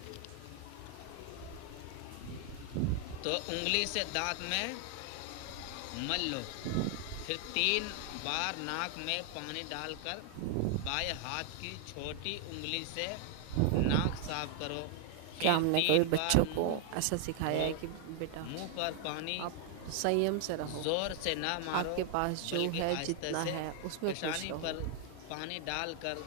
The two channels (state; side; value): different; both; correlation 0.00